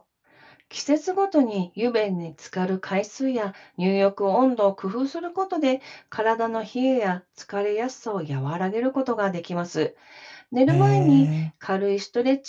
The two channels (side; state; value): both; identical; correlation 1.00